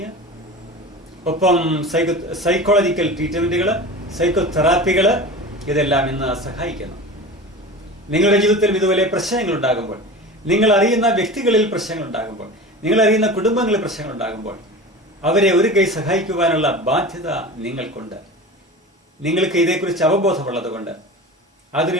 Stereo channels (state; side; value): normal; both; correlation 0.33